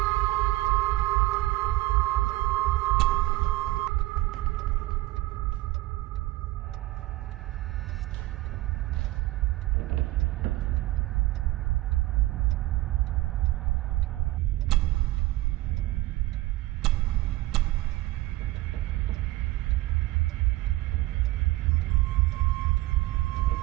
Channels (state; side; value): quieter; left; 18.0 dB